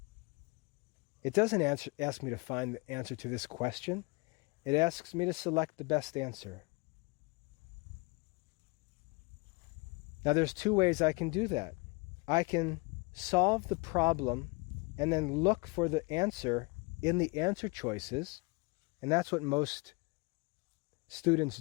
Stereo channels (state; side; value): quieter; right; 29.0 dB